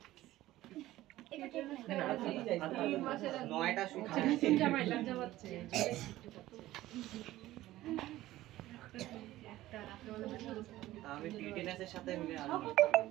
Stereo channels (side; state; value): left; quieter; 15.8 dB